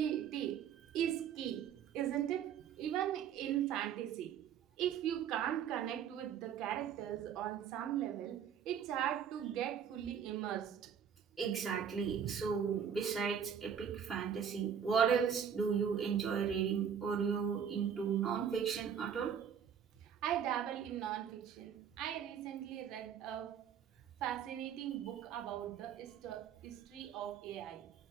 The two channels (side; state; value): left; quieter; 8.2 dB